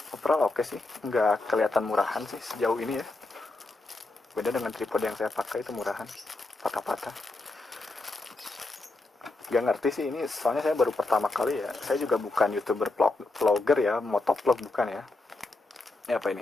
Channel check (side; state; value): right; quieter; 3.1 dB